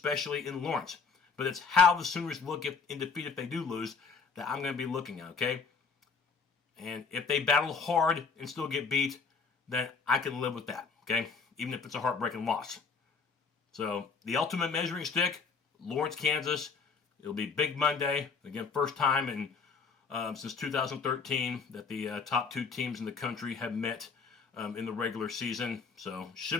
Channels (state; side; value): quieter; right; 5.1 dB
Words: in Lawrence. But it's how the Sooners look in defeat if they do lose that I'm going to be looking at, okay? And if they battle hard and still get beat, then I can live with that, okay? Even if it's a heartbreaking loss. So the ultimate measuring stick, Lawrence, Kansas. It'll be Big Monday. Again, first time in since 2013 that the top 2 teams in the country have met in the regular season. So